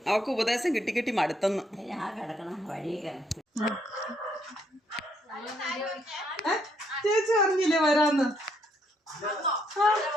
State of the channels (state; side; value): normal; both; correlation 0.72